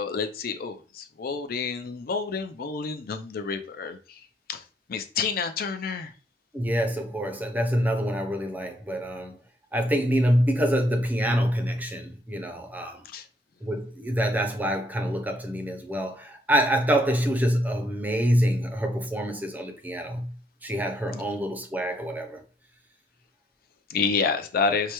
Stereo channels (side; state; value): both; normal; correlation 0.67